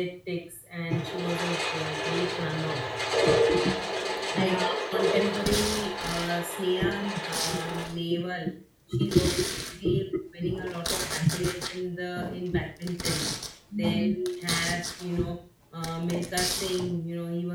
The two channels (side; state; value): both; identical; correlation 1.00